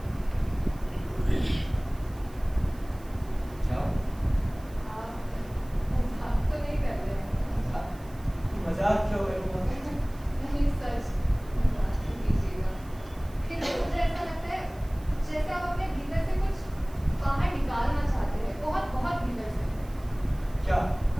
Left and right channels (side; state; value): right; noise; hiss, 25 dB below the sound